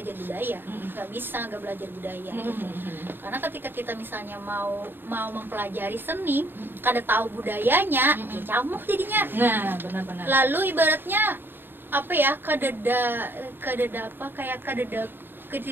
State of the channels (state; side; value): late; left; 0.097 ms